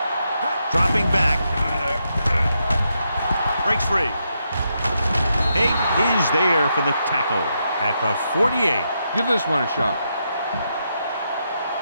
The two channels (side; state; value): both; inverted; correlation -0.82